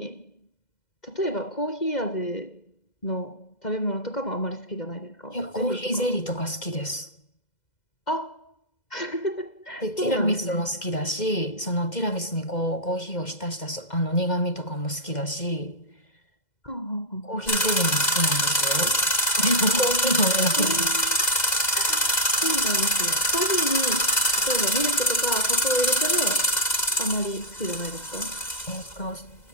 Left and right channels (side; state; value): right; late; 2.0 ms